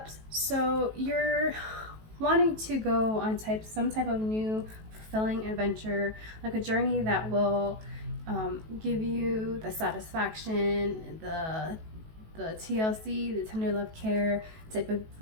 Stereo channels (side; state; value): left; late; 18 ms